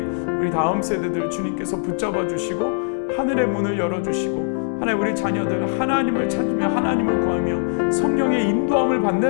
우리 다음 세대들 주님께서 붙잡아 주시고 하늘의 문을 열어주시고 하나님 우리 자녀들 하나님을 찾으며 하나님을 구하며 성령의 인도함을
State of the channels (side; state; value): right; silent; 61 dB below the other